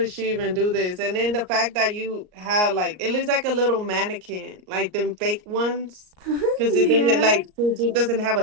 she even do this? And then the fact that you have like, it looks like a little mannequin, like them fake ones, because it didn't Yeah. like it doesn't have a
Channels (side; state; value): left; late; 38 ms